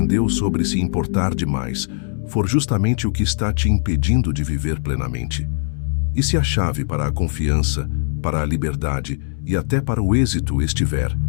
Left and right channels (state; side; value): silent; right; digital silence